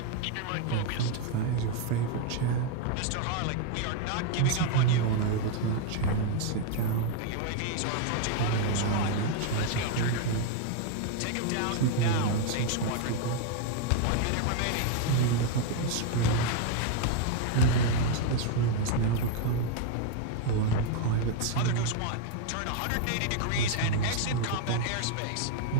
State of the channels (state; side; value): different; both; correlation 0.01